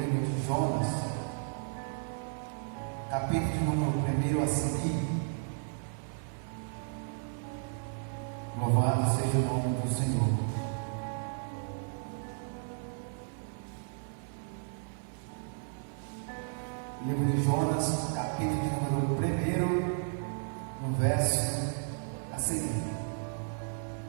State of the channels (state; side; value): silent; left; 55 dB below the other